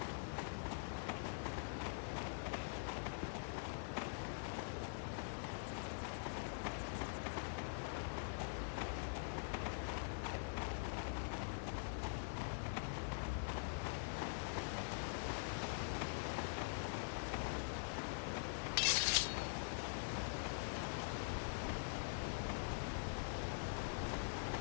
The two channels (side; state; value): right; silent; digital silence